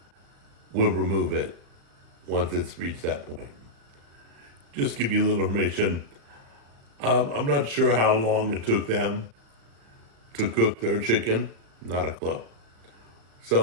we'll remove it once it's reached that point. Just give you a little information. I'm not sure how long it took them to cook their chicken. Not a clue.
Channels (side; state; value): left; late; 36 ms